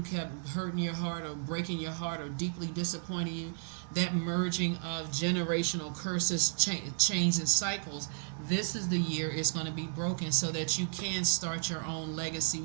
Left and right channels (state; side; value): silent; left; 56 dB below the other